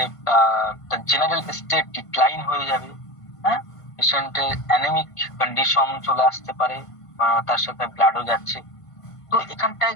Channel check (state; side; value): late; right; 1.5 ms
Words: জেনারেল স্টেট ডিক্লাইন হয়ে যাবে। হ্যাঁ, পেশেন্টের অ্যানেমিক কন্ডিশন চলে আসতে পারে, তার সাথে ব্লাডও যাচ্ছে। তো এখানটায়